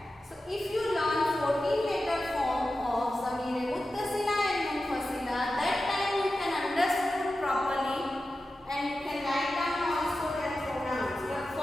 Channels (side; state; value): both; normal; correlation 0.93